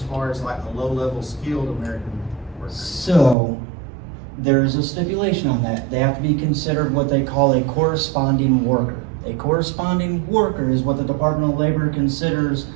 far as like a low-level skilled American worker? So, there's a stipulation on that. They have to be considered what they call a corresponding worker. A corresponding worker is what the Department of Labor considers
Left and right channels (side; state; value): left; drops out; at 3.4 s